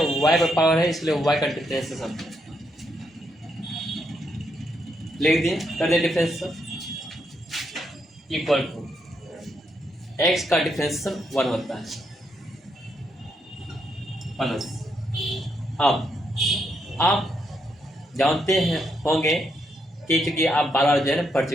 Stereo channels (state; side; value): normal; both; correlation 0.78